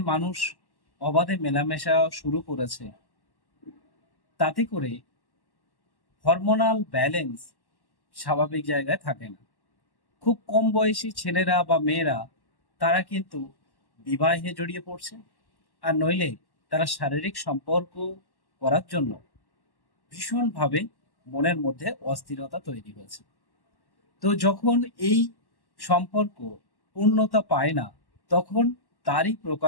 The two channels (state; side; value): late; right; 1.1 ms